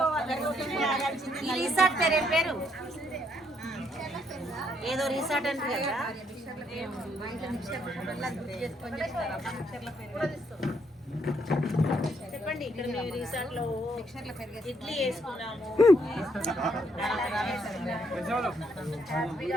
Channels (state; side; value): normal; both; correlation 0.72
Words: రిసార్ట్ పేరు ఏదో రిసార్ట్ అంటే కదా. చెప్పండి. ఇక్కడ మేము రిసార్ట్ లో ఇడ్లీ వేసుకున్నాము.